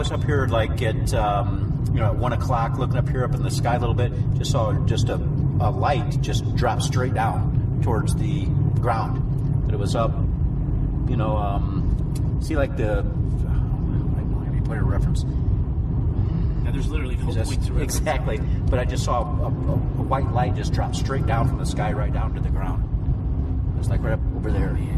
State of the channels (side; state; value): both; identical; correlation 1.00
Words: up here like at at 1 o'clock, looking up here up in the sky a little bit. Just saw just a light just drop straight down towards the ground. But it was up, see like the. I don't have any point of reference. Now there's literally no point to reference. Exactly, but I just saw a white light just drop straight down from the sky right down to the ground. It was like right up over there. Oh,